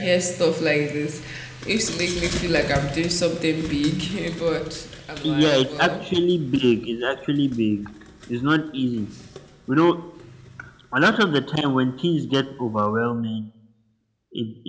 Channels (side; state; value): both; identical; correlation 1.00